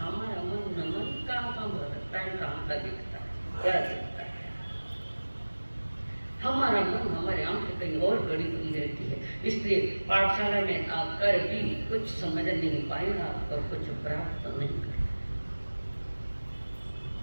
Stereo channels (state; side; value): inverted; both; correlation -1.00